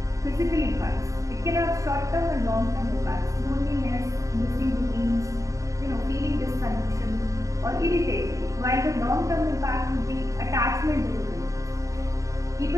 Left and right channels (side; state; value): left; late; 0.16 ms